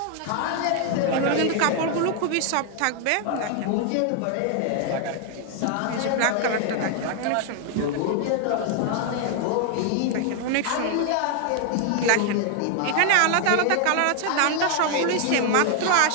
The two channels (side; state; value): both; different; correlation 0.00